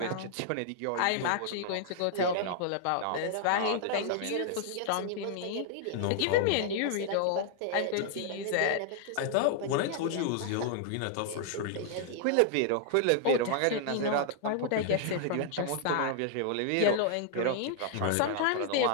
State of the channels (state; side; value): different; both; correlation -0.01